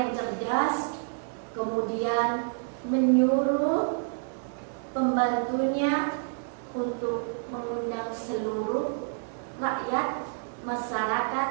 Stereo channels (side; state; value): left; silent; 59 dB below the other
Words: cerdas kemudian menyuruh pembantunya untuk mengundang seluruh rakyat masyarakat